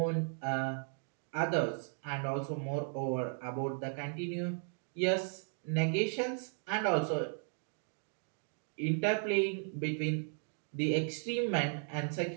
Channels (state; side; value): silent; left; 54 dB below the other